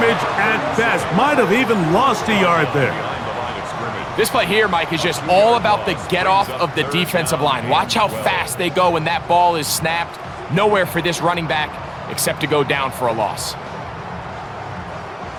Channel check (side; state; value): both; identical; correlation 1.00